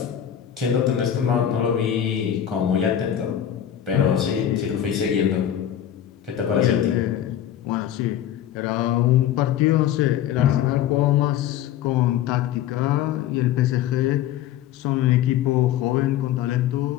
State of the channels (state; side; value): quieter; right; 10.7 dB